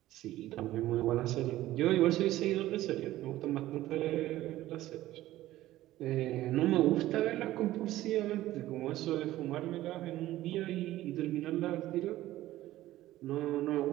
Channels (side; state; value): left; quieter; 15.3 dB